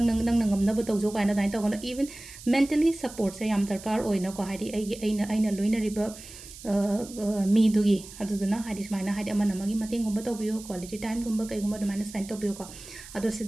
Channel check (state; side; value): noise; right; hiss, 16 dB below the sound